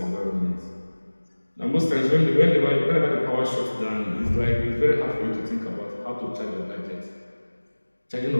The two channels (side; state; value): both; inverted; correlation -1.00